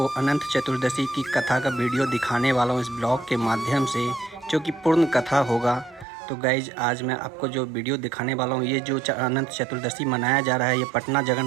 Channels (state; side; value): drops out; left; at 6.1 s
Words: अनंत चतुर्दशी की कथा का वीडियो दिखाने वाला हूँ इस ब्लॉग के माध्यम से, जो कि पूर्ण कथा होगा। तो गाइज आज मैं आपको जो वीडियो दिखाने वाला हूँ, ये जो अनंत चतुर्दशी मनाया जा रहा है, ये पटना